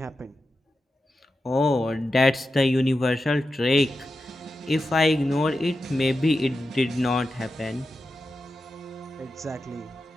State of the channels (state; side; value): normal; both; correlation 0.90